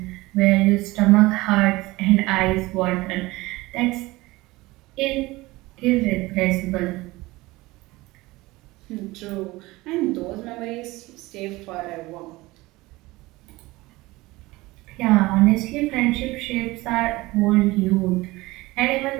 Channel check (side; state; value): left; quieter; 20.4 dB